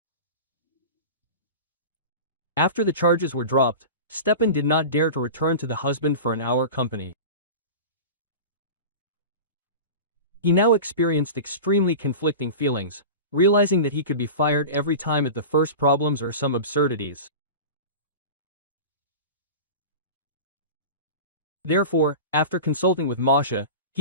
After the charges were dropped, Stepan did not dare to return to the husband for an hour company. He now experienced extremely conflicting feelings, realizing that he could be fired every time at the first problems or some absurdities. Therefore, after consulting with Masha,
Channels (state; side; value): inverted; both; correlation -0.31